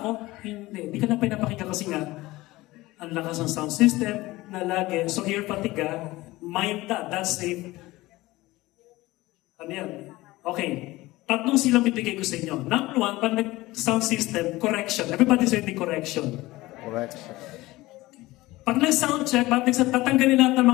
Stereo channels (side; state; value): right; quieter; 19.1 dB